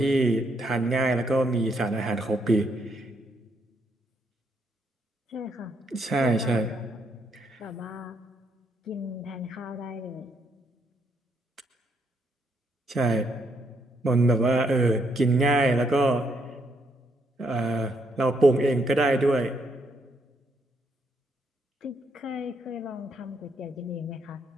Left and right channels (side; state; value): both; normal; correlation 0.75